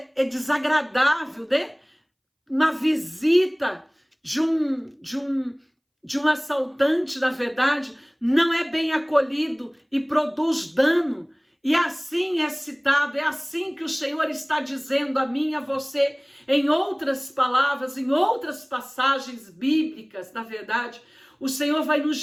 desagradável, né? Uma visita de um assaltante, na verdade, não é bem acolhido e produz dano. E assim é citado, é assim que o Senhor está dizendo a mim e a você, em outras palavras, em outras passagens bíblicas, na verdade. O Senhor vai nos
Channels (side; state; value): both; identical; correlation 1.00